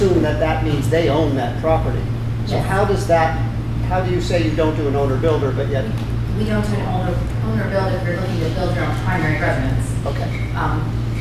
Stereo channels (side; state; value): both; identical; correlation 1.00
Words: that that means they own that property. So Yes. how do you say you don't do an owner-builder, but yet, We don't do an owner build if you're looking to build your own primary residence. okay.